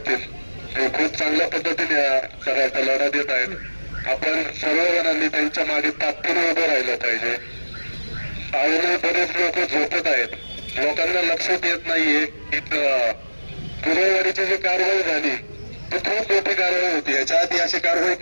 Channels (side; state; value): both; inverted; correlation -1.00